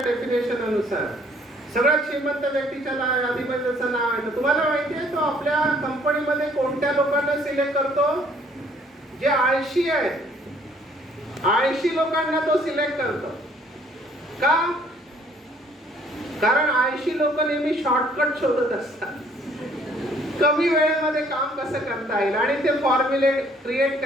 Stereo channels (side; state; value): both; normal; correlation 0.61